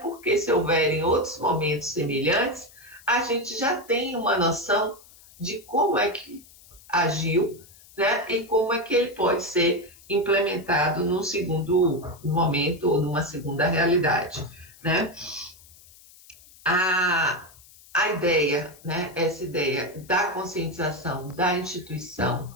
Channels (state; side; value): noise; left; hiss, 24 dB below the sound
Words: se houverem outros momentos semelhantes, a gente já tem uma noção de como é que agiu, né, e como é que ele pode ser implementado num segundo momento ou numa segunda realidade, né? A ideia, né, essa ideia da conscientização da instituição,